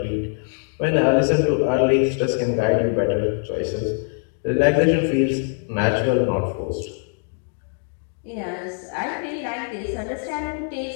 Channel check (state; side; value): silent; right; 57 dB below the other